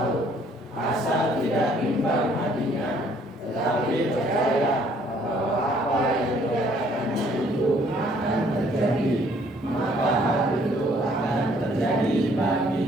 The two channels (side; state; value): both; normal; correlation 0.62